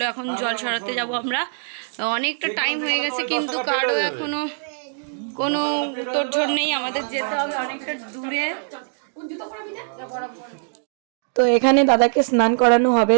এখন জল সরাতে যাব আমরা। অনেকটা টাইম হয়ে গেছে কিন্তু কারো এখনো কোনো তোড়জোড় নেই, আমাদের যেতে হবে অনেকটা দূরে। তো এখানে দাদাকে স্নান করানো হবে,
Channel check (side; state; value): left; silent; digital silence